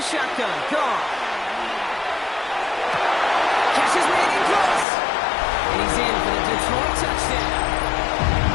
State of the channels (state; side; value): drops out; right; at 4.9 s